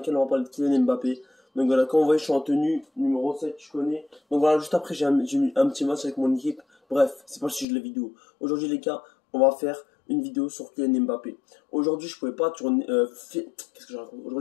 on va parler de Kylian Mbappé. Donc voilà, comme vous voyez, je suis en tenue numéro 7, je connais. Donc voilà, juste après j'ai mis un petit match avec mon équipe. Bref, c'est pas le sujet de la vidéo. Aujourd'hui les gars, on va faire une vidéo sur Kylian Mbappé. Aujourd'hui je pouvais pas tourner... Qu'est-ce que je raconte?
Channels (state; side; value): drops out; right; at 7.7 s